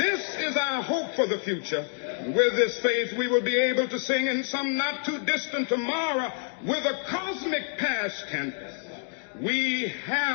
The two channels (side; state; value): right; silent; 60 dB below the other